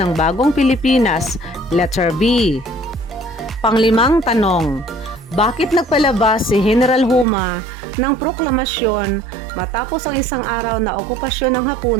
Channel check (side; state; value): left; drops out; at 7.2 s